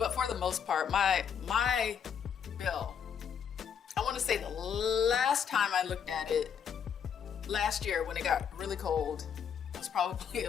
for the most part, my bill, I want to say the last time I looked at it, last year when it got really cold, it was probably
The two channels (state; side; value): quieter; right; 7.6 dB